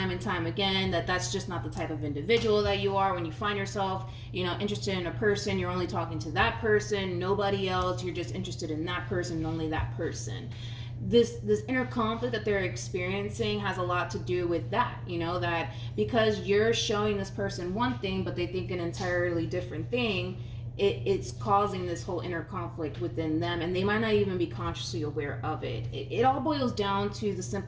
and time again that that's just not the type of individual that you are. When you find yourself, interested in a person, you're only talking to that person, nobody else. You're just interested in that person and only that person. This inner conflict that they're experiencing has a lot to do with that, that because you're showing this person one thing, but they think an entirely different thing, it's causing this whole inner conflict within them, and they might not even be consciously aware of it. It all boils down to the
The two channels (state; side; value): identical; both; correlation 1.00